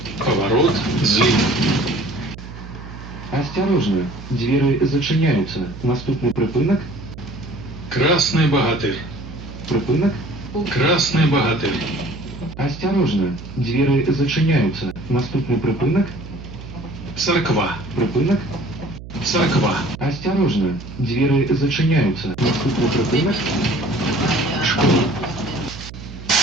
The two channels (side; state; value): right; noise; hum, 13 dB below the sound